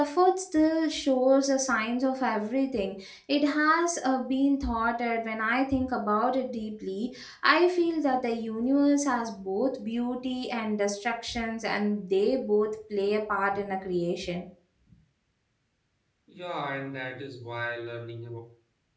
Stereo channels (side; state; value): both; identical; correlation 1.00